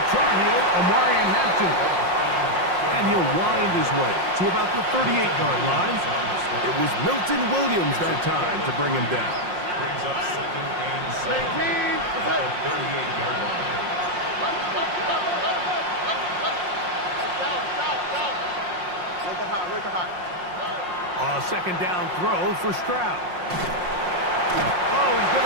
Tar Heel, Omarion Hampton. And he'll wind his way to about the 38-yard line. It was Milton Williams that time to bring him down. Brings up second and 7 at the 38-yard line. A second down throw for Stroud. Oh, he's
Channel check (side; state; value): left; late; 5.6 ms